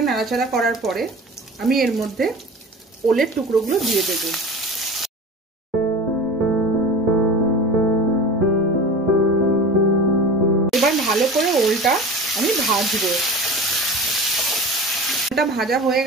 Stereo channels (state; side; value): normal; both; correlation 0.34